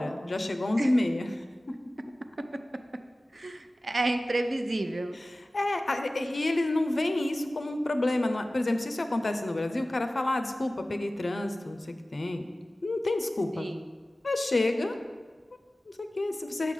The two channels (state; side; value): normal; both; correlation 0.97